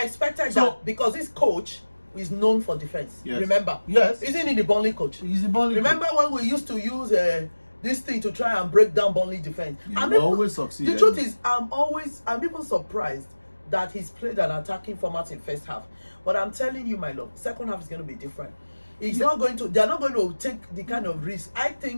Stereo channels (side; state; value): both; inverted; correlation -1.00